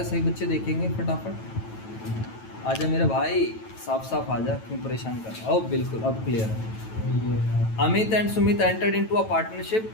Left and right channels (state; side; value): late; right; 9.1 ms